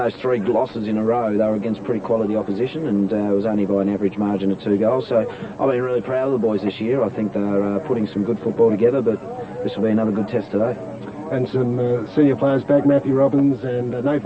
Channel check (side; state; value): both; identical; correlation 1.00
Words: 3 losses in a row, they were against pretty quality opposition, and it was only by an average margin of 2 goals. So I've been really proud of the boys this year. I think they're putting some good football together, but this will be another good test today. And some senior players back, Matthew Robbins and